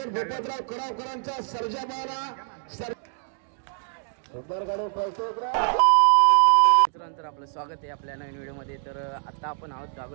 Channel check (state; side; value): silent; left; digital silence